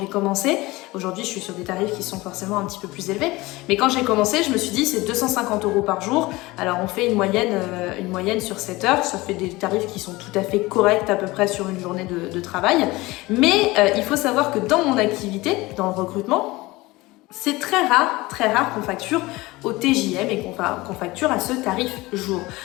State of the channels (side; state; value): right; quieter; 20.8 dB